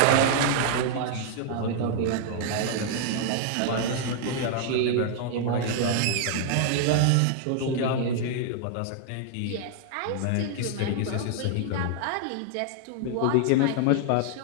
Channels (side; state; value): both; different; correlation -0.01